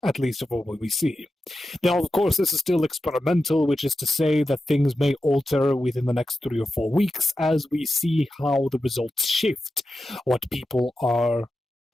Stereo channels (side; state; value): both; normal; correlation 0.91